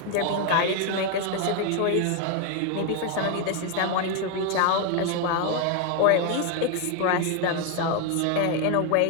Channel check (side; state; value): both; different; correlation 0.01